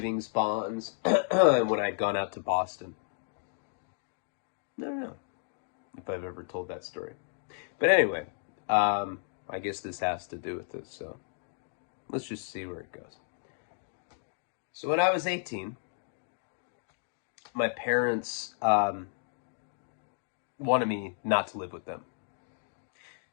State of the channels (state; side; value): silent; right; digital silence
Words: bonds and when I'd gone out to Boston. I don't know if I've ever told that story. But anyway, I guess this has to do with this, so let's just see where it goes. So when I was 18, my parents wanted me not to live with them